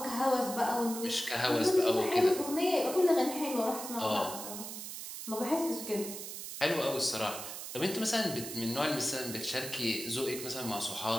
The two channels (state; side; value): noise; right; hiss, 8 dB below the sound